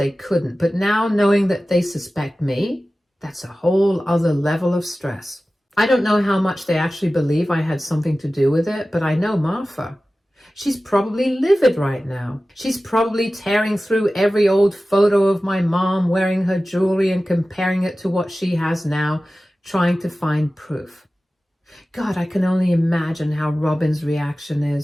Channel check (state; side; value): normal; both; correlation 0.96